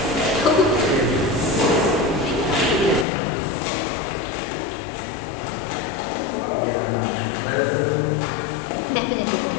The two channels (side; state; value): right; drops out; at 3.1 s